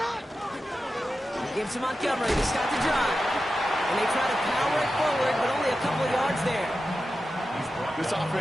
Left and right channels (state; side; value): normal; both; correlation 0.92